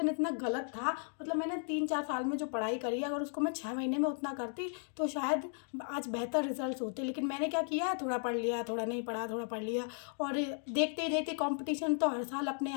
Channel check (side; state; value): right; silent; 54 dB below the other